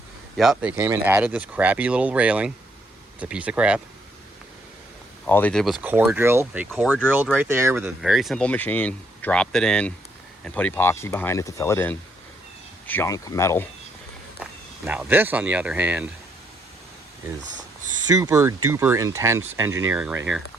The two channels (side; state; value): both; normal; correlation 0.72